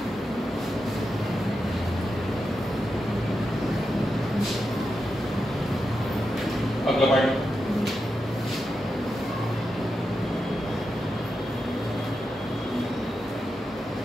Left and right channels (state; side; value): normal; both; correlation 0.88